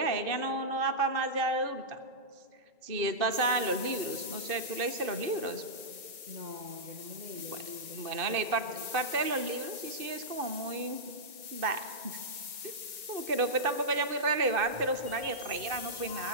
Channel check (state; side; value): late; left; 2.5 ms